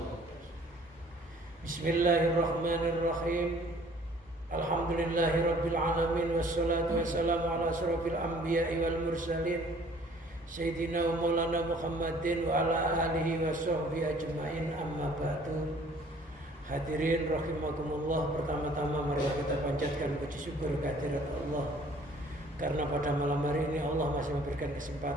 Bismillahirrahmanirrahim. Alhamdulillahirabbil alamin wassalatu wassalamu ala asyrofil anbiya'i wal mursalin Sayyidina wa maulana Muhammadin wa ala alihi wa sahbihi ajma'in, amma ba'du. Hadirin rahimakumullah, pertama-tama mari kita panjatkan puji syukur kehadirat Allah, karena pada malam hari ini Allah masih memberikan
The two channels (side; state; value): both; normal; correlation 0.55